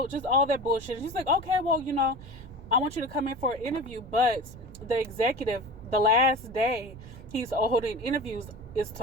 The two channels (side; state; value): right; noise; rumble, 17 dB below the sound